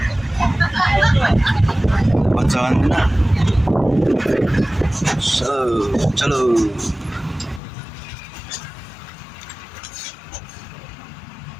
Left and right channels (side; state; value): right; drops out; at 7.6 s